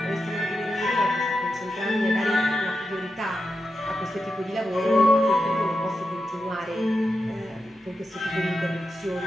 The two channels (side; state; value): both; normal; correlation 0.89